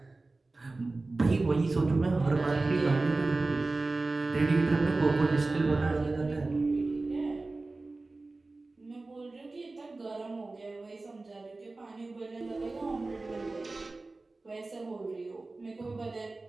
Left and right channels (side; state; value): left; quieter; 3.3 dB